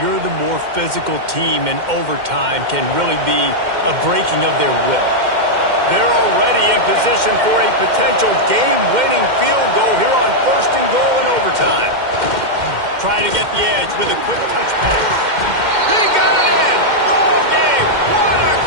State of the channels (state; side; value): late; left; 2.1 ms